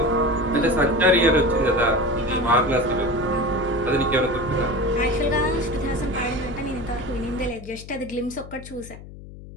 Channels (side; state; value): left; noise; hum, 16 dB below the sound